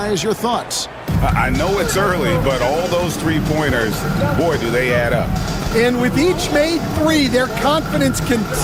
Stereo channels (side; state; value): both; identical; correlation 1.00